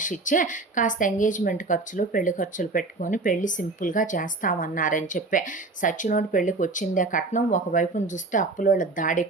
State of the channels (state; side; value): quieter; left; 3.4 dB